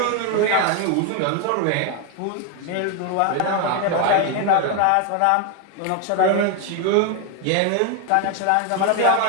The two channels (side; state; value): both; different; correlation 0.01